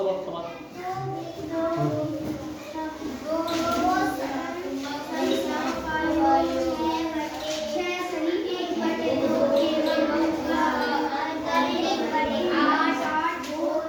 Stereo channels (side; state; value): both; identical; correlation 1.00